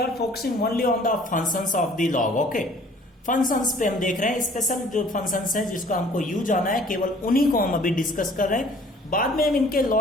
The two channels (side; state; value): both; normal; correlation 0.53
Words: focusing only on the functions of the log, okay. Functions पे हम देख रहे हैं, स्पेशल जो फंक्शंस है जिसको हमको यूज आना है, केवल उन्हीं को हम अभी डिस्कस कर रहे हैं. बाद में हम इनके